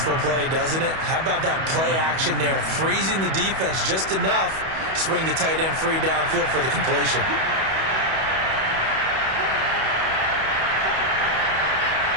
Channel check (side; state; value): left; late; 31 ms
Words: play, doesn't it? How about that play action there? Freezing the defense just enough to bring the tight end free downfield for the completion.